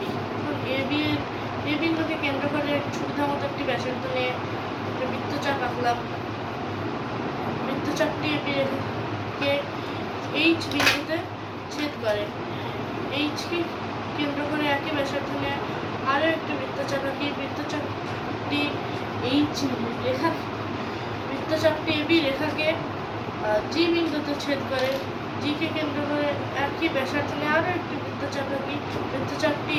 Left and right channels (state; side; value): identical; both; correlation 1.00